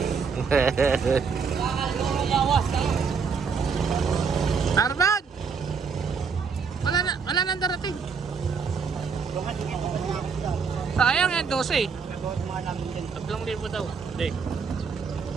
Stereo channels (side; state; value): left; quieter; 5.7 dB